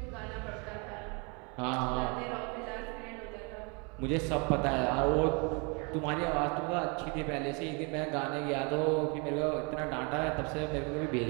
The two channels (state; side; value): quieter; left; 32.7 dB